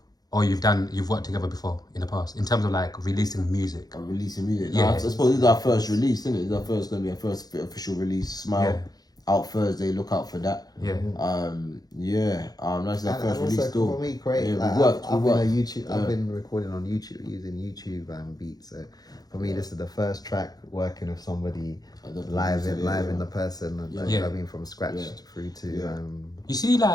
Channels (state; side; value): late; right; 0.19 ms